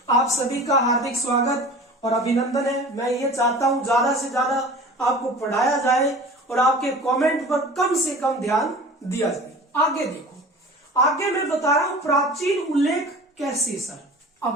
आप सभी का हार्दिक स्वागत और अभिनंदन है। मैं ये चाहता हूं ज्यादा से ज्यादा आपको पढ़ाया जाए और आपके कमेंट पर कम से कम ध्यान दिया जाए। आगे देखो, आगे मैं बता रहा हूं प्राचीन उल्लेख कैसे सर।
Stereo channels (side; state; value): both; normal; correlation 0.40